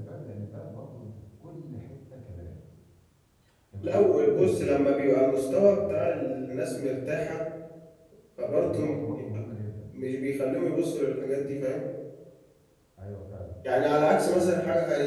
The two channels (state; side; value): identical; both; correlation 1.00